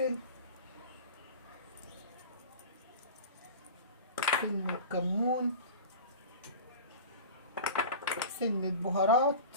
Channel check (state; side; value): inverted; both; correlation -0.35